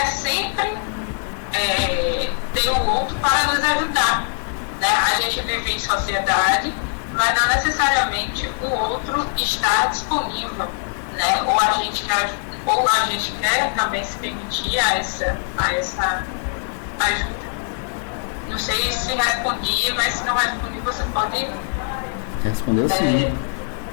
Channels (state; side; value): silent; right; digital silence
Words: sempre ter o outro para nos ajudar, né? A gente vive em sociedade, mas não necessariamente o outro está disponível, né? Ou a gente quer também se permitir a essa ajuda. Não sei se respondi, mas se não respondi, você pode... Respondeu sim.